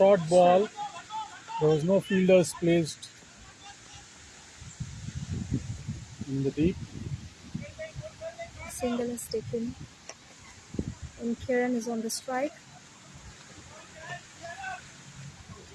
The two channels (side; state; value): both; identical; correlation 1.00